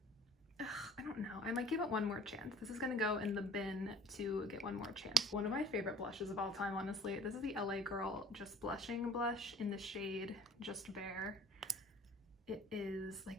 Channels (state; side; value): normal; both; correlation 0.50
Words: Ugh, I don't know. I might give it one more chance. This is gonna go in the bin to get one more chance. One of my favorite blushes of all time, honestly. This is the LA Girl Just Blushing blush in the shade Just Bare. It is